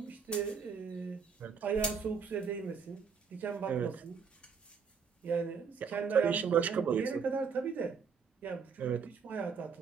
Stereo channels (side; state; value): left; quieter; 6.1 dB